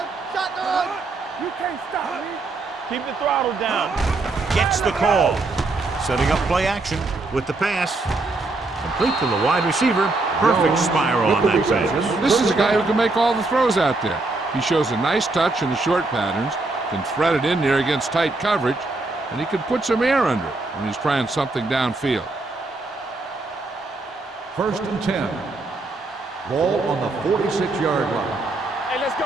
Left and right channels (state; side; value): quieter; left; 3.3 dB